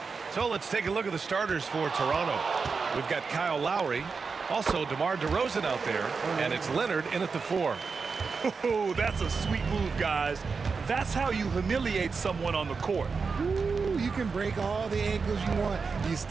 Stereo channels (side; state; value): left; quieter; 5.0 dB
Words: So let's take a look at the starters for Toronto. We've got Kyle Lowry, also DeMar DeRozan out there, and it's Leonard in at the 4. Oh, that's a sweet move, guys. That's how you humiliate someone on the court. Ooh, you can break all the ankles you want. You